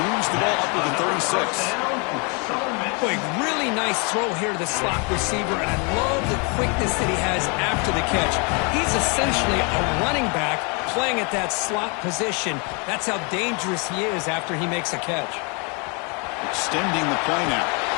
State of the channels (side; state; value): right; quieter; 33.4 dB